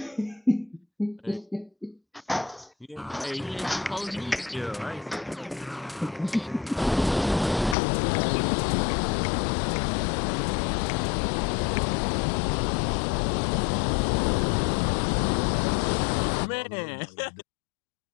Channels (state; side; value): drops out; right; at 7.8 s